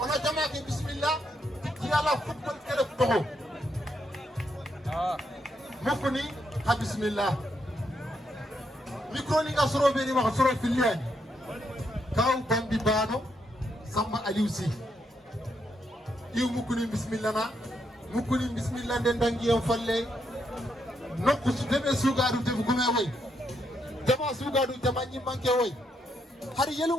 jama ke bismillah titi yala football kere toho mokoni ha bismillah micro ni ga soro be ni ma soro filiani kaw bambi bano Samba Aliusi iw mukuni bismillah na mukuni bismillah den dangi en falle nokku su debe sugadu te gume way jama sugadu jama nyi manke way har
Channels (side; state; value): both; normal; correlation 0.78